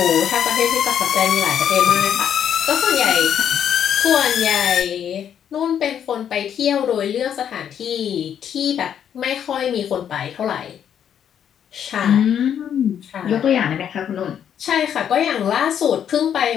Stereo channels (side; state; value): right; quieter; 9.0 dB